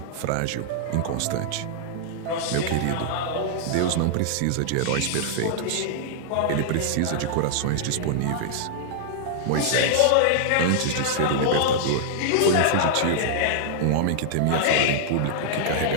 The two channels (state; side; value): different; both; correlation -0.01